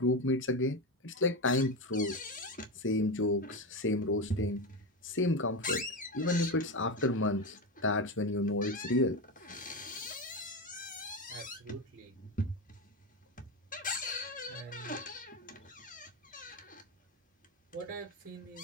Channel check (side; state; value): both; normal; correlation 0.16